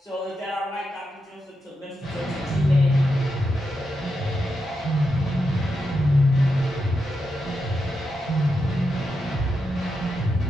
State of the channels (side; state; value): both; normal; correlation 0.86